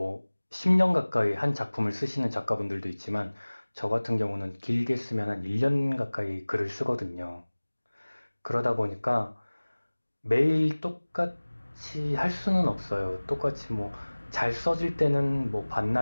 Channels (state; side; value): inverted; both; correlation -1.00